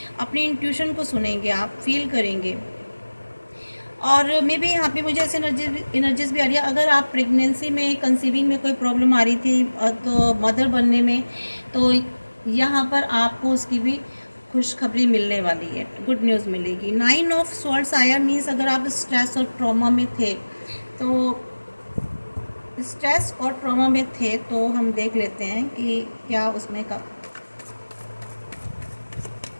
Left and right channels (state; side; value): inverted; both; correlation -1.00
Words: अपनी इंट्यूशन को सुनेंगे, आप फील करेंगे। और मे बी यहाँ पे मुझे ऐसे एनर्जीज भी आ रही है। अगर आप प्रेगनेंसी में, कंसीविंग में कोई प्रॉब्लम आ रही थी तो मदर बनने में, तो यहाँ पर आपको उसकी भी खुशखबरी मिलने वाली है, गुड न्यूज़ मिलेगी। 9 ऑफ स्वॉर्ड्स आया, मीन्स अगर आप स्ट्रेस और ट्रॉमा में थे, तो स्ट्रेस और ट्रॉमा में थे तो हम देख लेते हैं कि क्या उसमें का